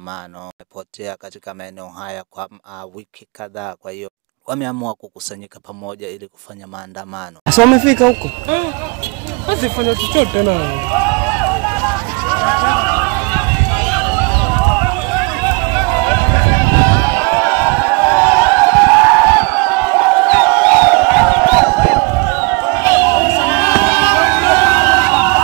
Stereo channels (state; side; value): quieter; left; 30.3 dB